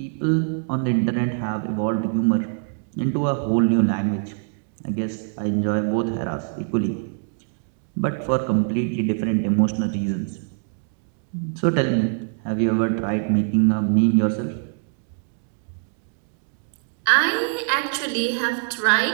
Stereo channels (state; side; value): silent; left; 63 dB below the other